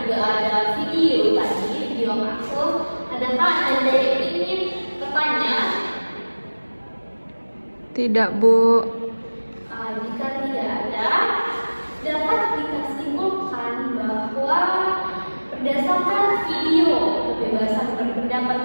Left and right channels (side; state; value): both; inverted; correlation -1.00